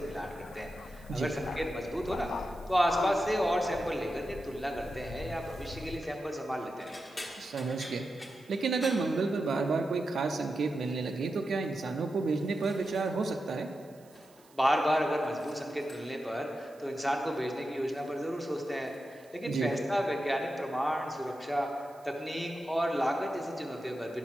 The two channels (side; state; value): right; noise; hiss, 28 dB below the sound